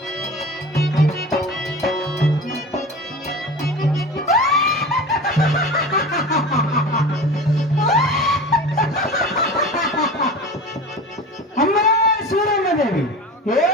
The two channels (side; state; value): both; normal; correlation 0.34